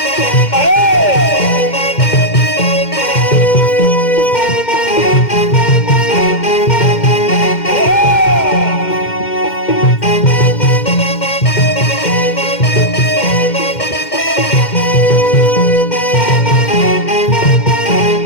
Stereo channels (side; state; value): right; late; 2.1 ms